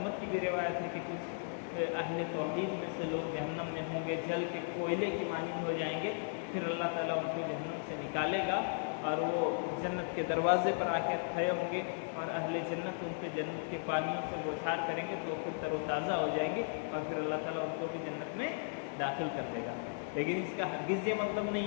کی بھی روایت ہے کہ کچھ اہل توحید میں سے لوگ جہنم میں ہوں گے، جل کے کوئلے کی مانند ہو جائیں گے، پھر اللہ تعالیٰ ان کو جہنم سے نکالے گا اور وہ جنت کے دروازے پر آ کے کھڑے ہوں گے، اور اہل جنت ان پہ جنت کے پانیوں سے بوچھار کریں گے تو وہ پھر تر و تازہ ہو جائیں گے، اور پھر اللہ تعالیٰ ان کو بھی جنت میں داخل کر دے گا۔ لیکن اس کا ہرگز یہ مطلب نہیں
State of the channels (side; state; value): right; silent; digital silence